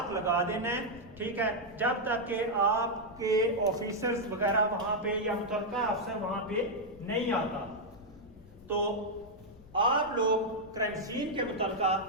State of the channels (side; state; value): left; noise; rumble, 22 dB below the sound